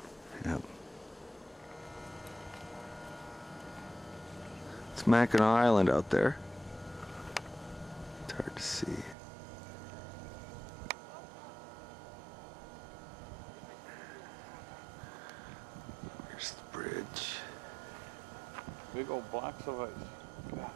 Yep. It's Mackinaw Island out there. It's hard to see. Here's the bridge. Big old blocks of ice. God.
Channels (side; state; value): left; drops out; at 9.2 s